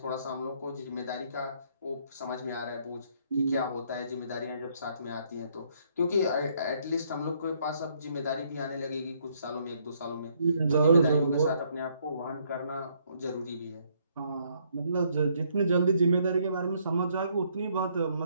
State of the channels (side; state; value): both; inverted; correlation -0.69